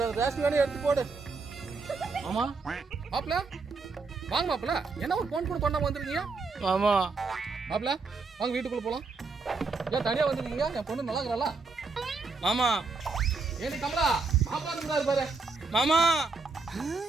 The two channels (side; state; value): left; quieter; 4.2 dB